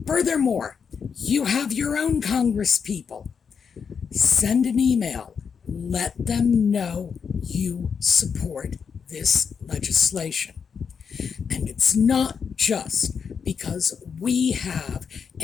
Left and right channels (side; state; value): right; quieter; 6.4 dB